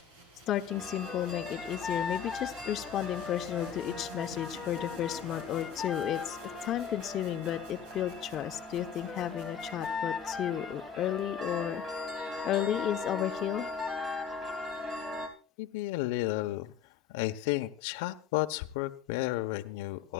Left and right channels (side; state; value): right; quieter; 8.9 dB